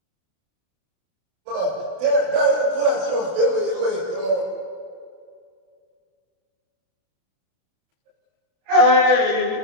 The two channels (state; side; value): late; left; 32 ms